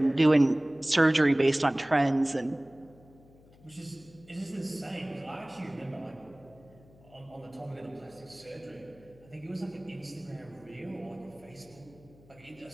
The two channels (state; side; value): noise; left; hum, 25 dB below the sound